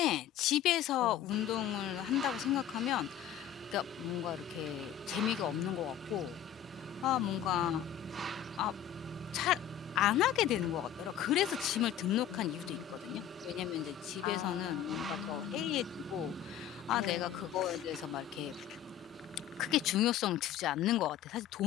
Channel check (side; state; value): right; quieter; 10.3 dB